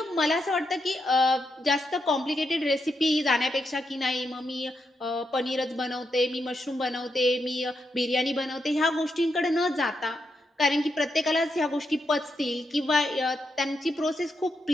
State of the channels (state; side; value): normal; both; correlation 0.83